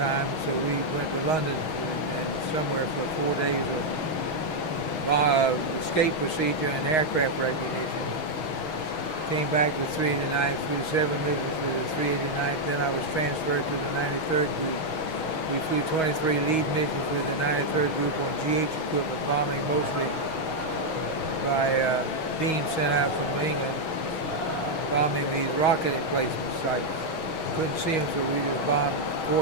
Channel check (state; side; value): late; right; 6.3 ms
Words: so we went to London and somewhere for 4 days of escape procedure and aircraft recognition. Came back with 389th, flew 7 missions with the 389th. Then I was transferred to the 93rd Group. We flew 23 lead missions with the 93rd Group on GH equipment, bombing mostly by beams sent out from England, bombing these rocket emplacement sites. Couldn't see them, so we just bombed